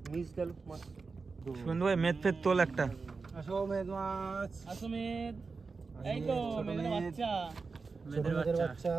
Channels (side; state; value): left; quieter; 4.4 dB